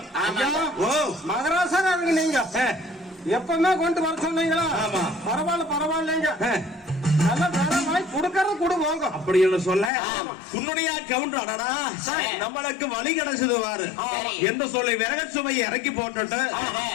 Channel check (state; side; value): drops out; right; at 9.9 s